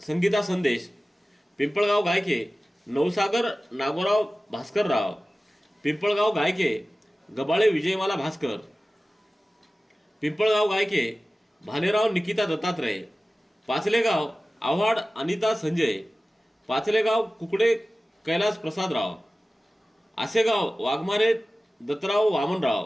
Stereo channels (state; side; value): normal; both; correlation 0.96